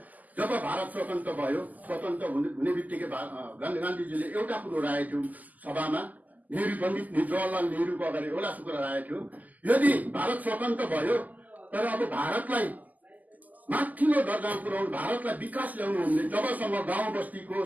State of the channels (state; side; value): late; left; 0.080 ms